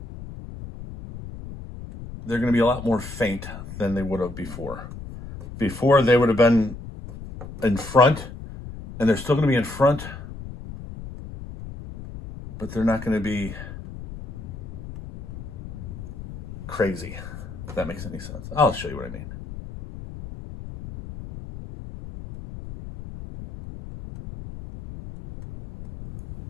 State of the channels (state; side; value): noise; left; rumble, 12 dB below the sound